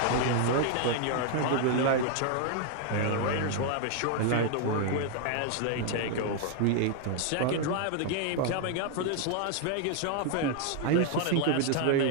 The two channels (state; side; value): different; both; correlation 0.00